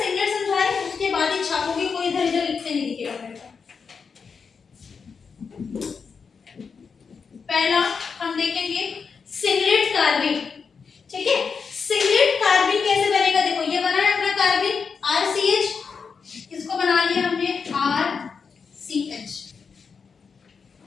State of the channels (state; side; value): quieter; right; 5.6 dB